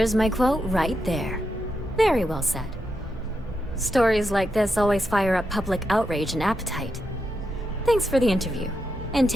my quote right there. Very well said. Stories like this always fire up public outrage and appetite. Thanks for the interview. And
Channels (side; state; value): both; normal; correlation 0.85